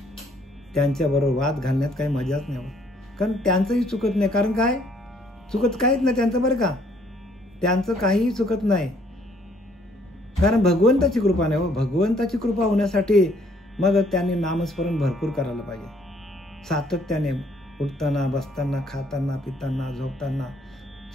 त्यांच्याबरोबर वाद घालण्यात काही मजाच नाही होत. कारण त्यांचंही चुकत नाही. कारण काय चुकत काहीच नाही त्यांचं बरं का. त्यांचं काहीही चुकत नाही. कारण भगवंताची कृपा नाही हो. भगवंताची कृपा होण्यासाठी मग त्यांनी नामस्मरण भरपूर करायला पाहिजे. सातत्याने उठताना, बसताना, खाताना, पिताना, झोपताना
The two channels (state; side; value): normal; both; correlation 0.64